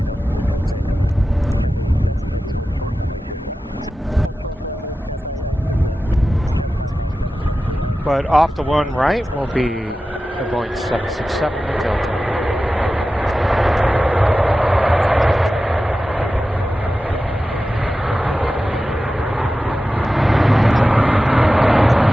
But off the one right will be the Boeing 767 Delta.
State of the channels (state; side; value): normal; both; correlation 0.94